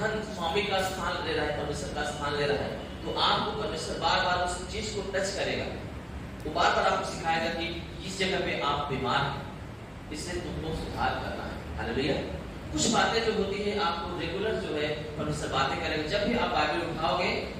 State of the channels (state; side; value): identical; both; correlation 1.00